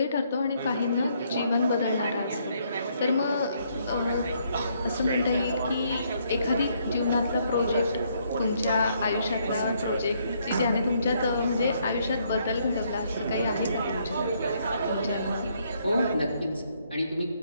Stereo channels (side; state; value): both; inverted; correlation -0.71